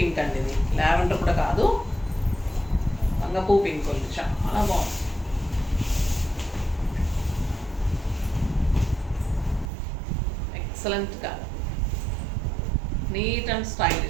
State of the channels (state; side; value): drops out; left; at 9.7 s